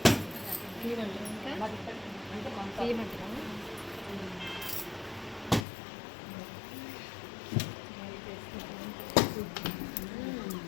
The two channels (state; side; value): drops out; right; at 5.7 s